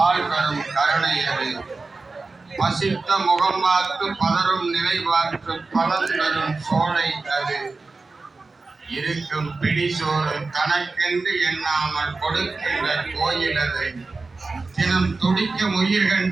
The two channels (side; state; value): left; quieter; 3.8 dB